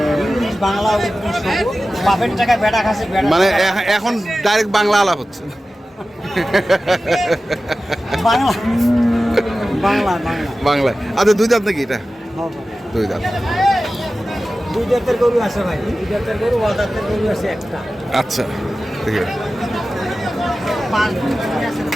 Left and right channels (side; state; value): both; normal; correlation 0.95